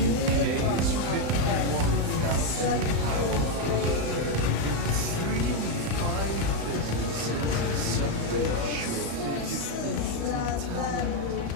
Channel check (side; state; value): left; late; 35 ms